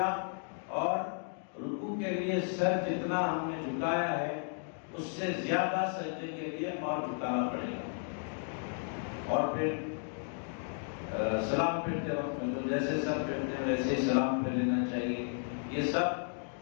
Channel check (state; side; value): silent; right; 55 dB below the other